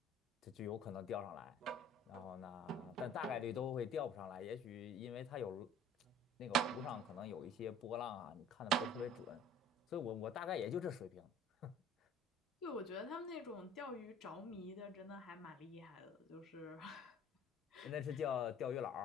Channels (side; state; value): both; normal; correlation 0.49